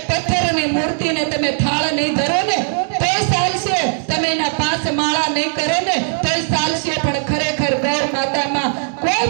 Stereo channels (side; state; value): left; silent; digital silence